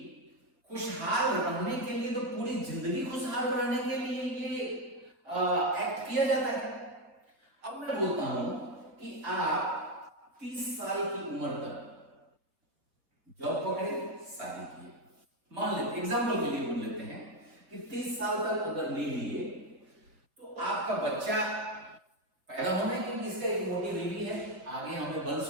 खुशहाल रहने के लिए, तो पूरी जिंदगी खुशहाल रहने के लिए ये एक्ट किया जाता है। अब मैं बोलता हूं कि आप 30 साल की उम्र तक जॉब पकड़े, शादी किए, मान लेते एग्जांपल के लिए मान लेते हैं कि 30 साल तक अगर ले लिए तो आपका बच्चा पैदा होना है, क्योंकि इसका एक मोटी बीवी है, आगे हमें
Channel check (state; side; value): late; left; 5.5 ms